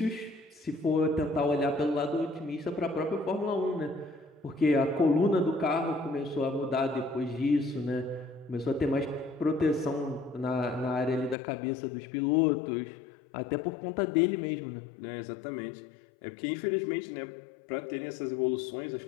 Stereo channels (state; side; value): drops out; right; at 11.4 s